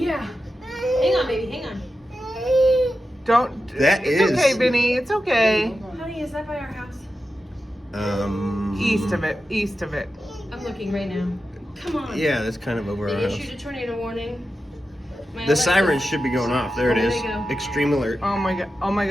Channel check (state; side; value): normal; both; correlation 0.91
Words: Hang on, baby, hang on. Don't. That it's is- okay, Vinny. It's okay. Honey, is that by our house? East of it. East of it. I'm looking right now. Come on. Yeah, that's kind of over our They house. issued a tornado warning. My The Alexa- sirens should be going off. There it There is. they go. Extreme alert. Oh my god. Oh my